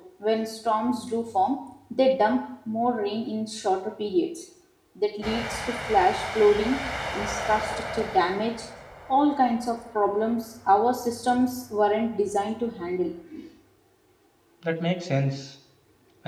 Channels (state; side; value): identical; both; correlation 1.00